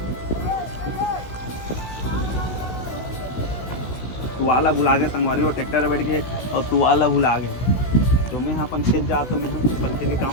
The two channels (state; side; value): late; right; 16 ms